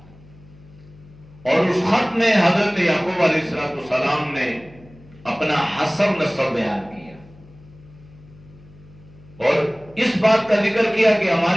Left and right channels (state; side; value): noise; left; hum, 24 dB below the sound